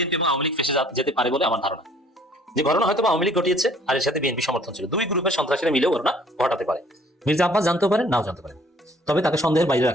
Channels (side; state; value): both; normal; correlation 0.57